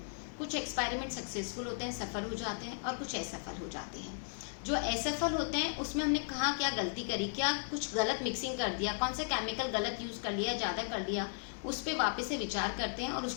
कुछ एक्सपेरिमेंट सक्सेसफुल होते हैं, सफल हो जाते हैं, और कुछ असफल हो जाते हैं। जो असफल होते हैं उसमें हमने कहाँ क्या गलती करी, क्या कुछ गलत मिक्सिंग कर दिया, कौन सा केमिकल गलत यूज कर लिया, ज्यादा कर लिया, उस पर वापस से विचार करते हैं और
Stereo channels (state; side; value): silent; right; 54 dB below the other